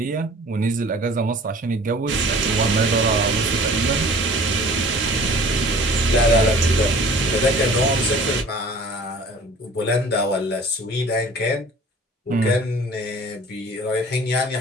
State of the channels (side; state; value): both; normal; correlation 0.47